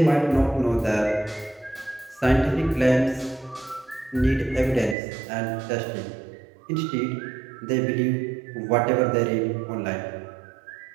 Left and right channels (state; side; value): drops out; left; at 5.0 s